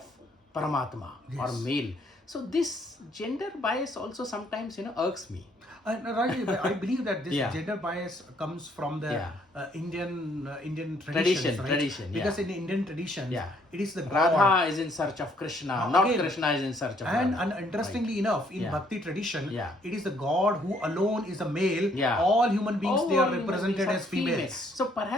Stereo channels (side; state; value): both; normal; correlation 0.66